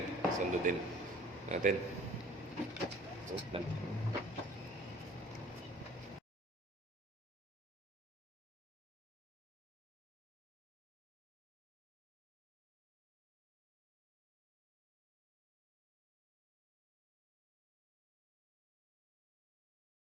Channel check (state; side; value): normal; both; correlation 0.51